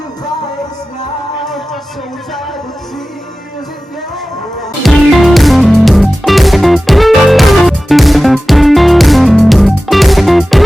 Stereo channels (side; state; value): both; normal; correlation 0.96